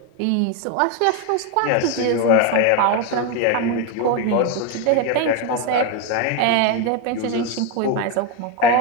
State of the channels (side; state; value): both; different; correlation 0.02